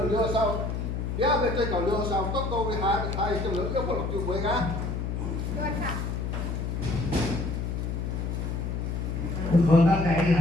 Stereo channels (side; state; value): left; noise; hum, 2 dB below the sound